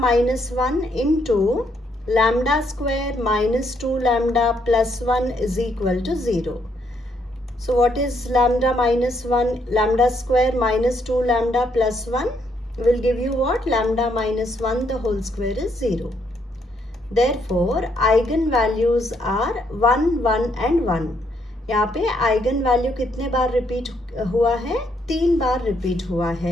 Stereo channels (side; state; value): both; normal; correlation 0.73